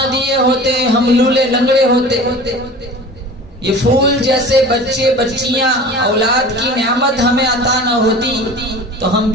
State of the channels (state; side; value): normal; both; correlation 0.39